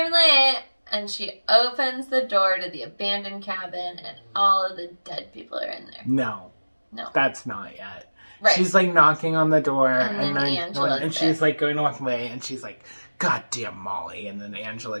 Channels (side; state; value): both; inverted; correlation -1.00